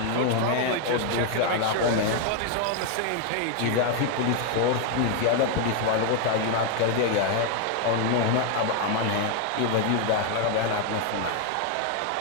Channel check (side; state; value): both; different; correlation 0.01